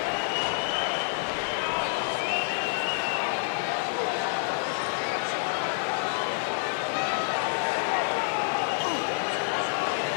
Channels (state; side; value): silent; right; digital silence